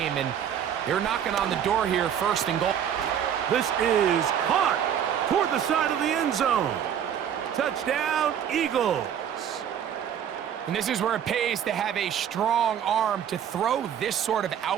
And they're knocking on the door here, 1st and goal. This is caught toward the side of the end zone. Touchdown, Eagles. And this is where it pays to have a strong arm to throw this sort of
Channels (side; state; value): left; quieter; 9.1 dB